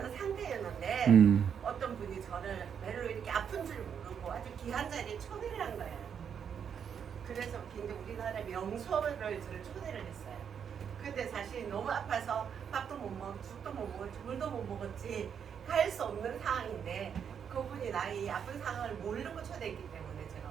상태였는데 어떤 분이 저를 별로 이렇게 아픈 줄 모르고 아주 귀한 자리에 초대를 한 거예요. 그래서 굉장히 우리나라 명소를 저를 초대를 했어요. 근데 사실 너무 아파서 밥도 못 먹고 죽도 못 먹었지 물도 못 먹었지 갈 수 없는 상황인데 그분이 나의 아픈 상황을 모르고 초대했기 때문에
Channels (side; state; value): left; quieter; 7.6 dB